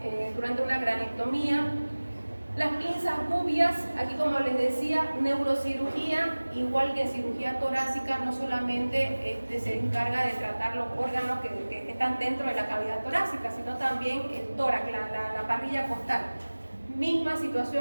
durante una cranectomía. Las pinzas gubias, aquí como les decía, neurocirugía, igual que en cirugía torácica, no solamente se encarga de tratar los órganos que están dentro de la cavidad torácica, sino también el tórax, la parrilla costal. Misma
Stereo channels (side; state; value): both; inverted; correlation -1.00